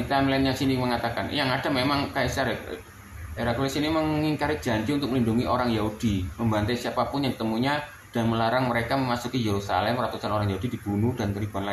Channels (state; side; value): identical; both; correlation 1.00